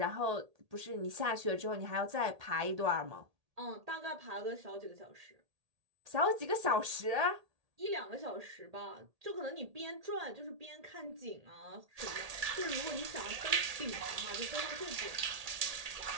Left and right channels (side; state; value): left; late; 1.8 ms